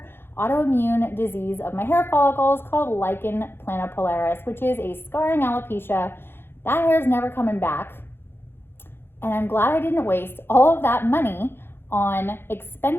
autoimmune disease of my hair follicles called lichen planopilaris, which is a scarring alopecia. That hair is never coming back, and I'm glad I didn't waste all of that money on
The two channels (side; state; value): right; late; 0.11 ms